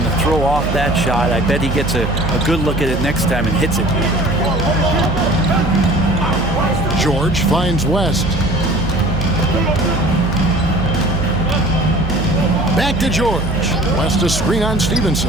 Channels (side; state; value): right; noise; hum, 5 dB below the sound